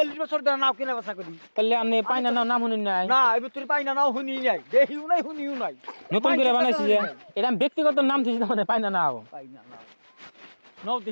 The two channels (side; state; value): both; inverted; correlation -1.00